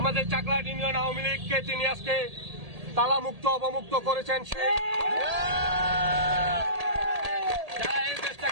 চাকলাহাট ইউনিয়ন আওয়ামী লীগকে তিনি আজকে তালামুক্ত অবমুক্ত করেছেন। যারা এই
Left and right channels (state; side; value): late; left; 1.8 ms